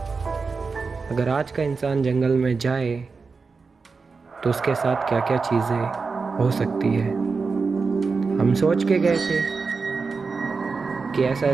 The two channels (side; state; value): left; quieter; 4.6 dB